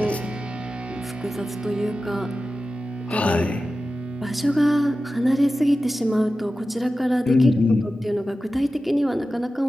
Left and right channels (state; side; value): normal; both; correlation 0.94